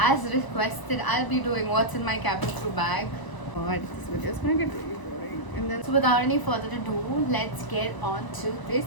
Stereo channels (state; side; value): late; right; 1.0 ms